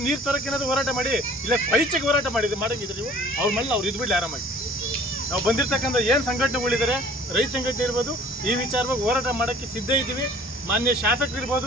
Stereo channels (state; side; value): normal; both; correlation 0.51